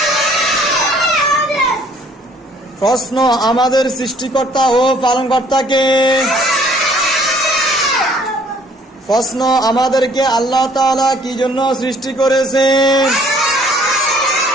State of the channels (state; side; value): normal; both; correlation 0.59